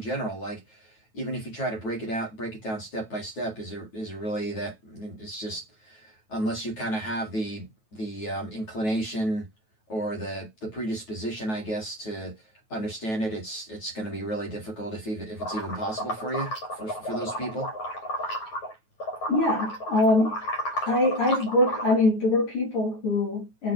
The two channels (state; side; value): late; right; 9.2 ms